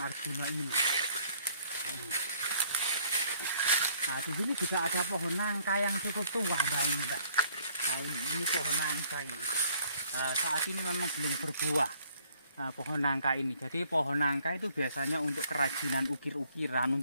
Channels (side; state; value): both; inverted; correlation -0.62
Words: Arjuna ini. Nah, di sini juga ada pohon nangka yang cukup tua, Mbak. Nah, ini pohon nangka ini. Saat ini memang belum berbuah. Pohon nangka ini. Jadi pohon nangka itu biasanya untuk kerajinan ukir-ukiran,